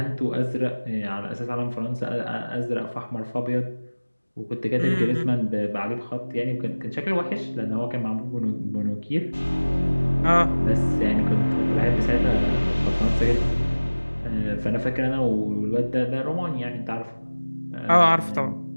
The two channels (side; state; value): both; inverted; correlation -1.00